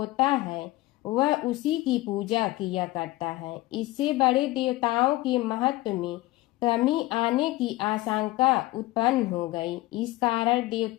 है वह उसी की पूजा किया करता है। इससे बड़े देवताओं के महत्व में कमी आने की आशंका उत्पन्न हो गई। इस कारण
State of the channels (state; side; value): quieter; right; 18.6 dB